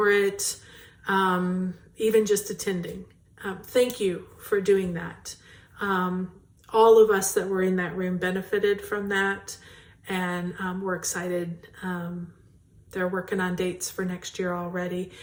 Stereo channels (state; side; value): identical; both; correlation 1.00